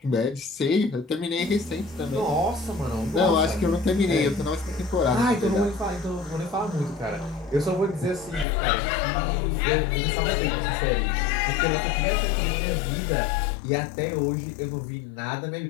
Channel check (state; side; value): drops out; right; at 8.5 s